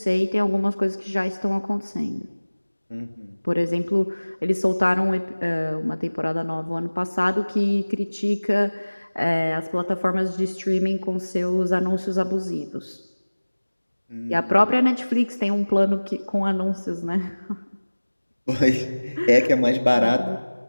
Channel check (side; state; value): both; inverted; correlation -1.00